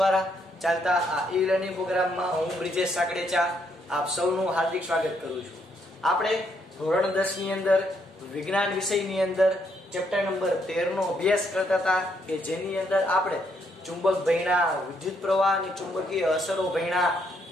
ચાલતા આ ઈ લર્નિંગ પ્રોગ્રામમાં હું બ્રિજેશ સાકડેચા આપ સૌનું હાર્દિક સ્વાગત કરું છું. આપણે ધોરણ 10 ની અંદર વિજ્ઞાન વિષયની અંદર ચેપ્ટર નંબર 13 નો અભ્યાસ કરતા હતા કે જેની અંદર આપણે ચુંબક ભણ્યા, વિદ્યુત પ્રવાહની ચુંબકીય અસરો ભણ્યા,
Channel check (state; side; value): normal; both; correlation 0.74